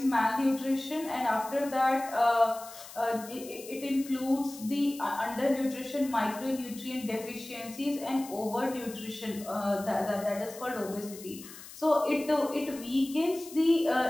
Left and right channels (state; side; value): noise; left; hiss, 16 dB below the sound